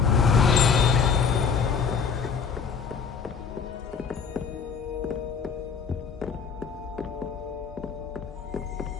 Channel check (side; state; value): right; quieter; 6.1 dB